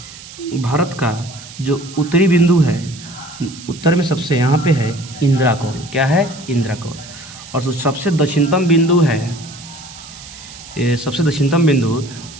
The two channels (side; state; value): right; noise; hiss, 16 dB below the sound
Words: भारत का जो उत्तरी बिंदु है, उत्तर में सबसे यहाँ पे है इंदिरा कौल। क्या है? इंदिरा कौल। और जो सबसे दक्षिणतम बिंदु है, ये सबसे दक्षिणतम बिंदु